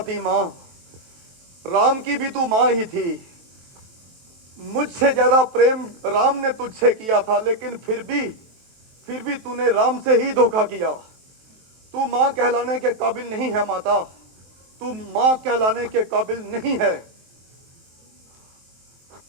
माँ। राम की भी तू माँ ही थी। मुझसे ज्यादा प्रेम राम ने तुझसे किया था, लेकिन फिर भी तूने राम से ही धोखा किया। तू माँ कहलाने के काबिल नहीं है माता। तू माँ कहलाने के काबिल नहीं है।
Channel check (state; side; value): late; left; 23 ms